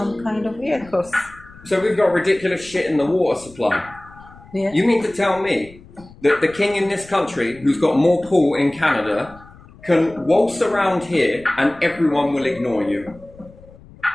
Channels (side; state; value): left; noise; rumble, 22 dB below the sound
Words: kind of vehicles. So we've got ridiculous shit in the water supply. Yeah. You mean to tell me that the king in this country, who's got more pull in Canada, can waltz around here and everyone will ignore you?